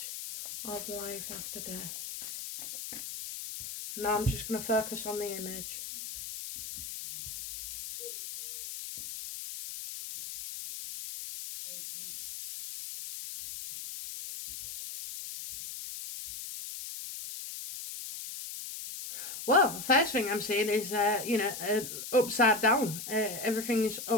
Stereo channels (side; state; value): left; noise; hiss, 9 dB below the sound